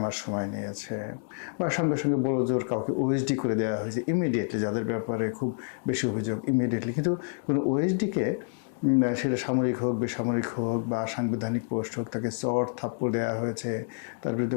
মাস সময় নিয়েছে, বা সঙ্গে সঙ্গে বড় জোর কাউকে ওএসডি করে দেওয়া হয়েছে ইমিডিয়েটলি, যাদের ব্যাপারে খুব বেশি অভিযোগ ইমিডিয়েটলি। কিন্তু কোনো ওএসডিকে, সেটা সামরিক হোক, বেসামরিক হোক, বা সাংবিধানিক পোস্ট হোক, তাকে চড় থাপ্পড় দেওয়া হয়েছে, তার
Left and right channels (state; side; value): silent; right; 59 dB below the other